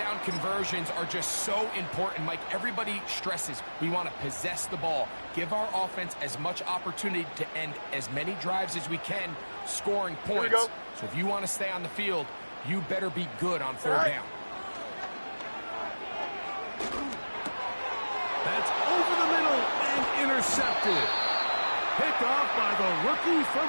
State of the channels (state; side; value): inverted; both; correlation -1.00